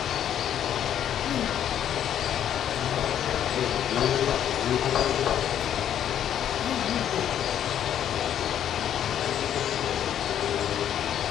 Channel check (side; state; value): right; quieter; 10.1 dB